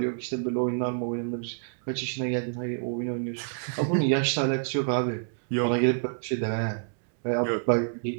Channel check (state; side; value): silent; left; digital silence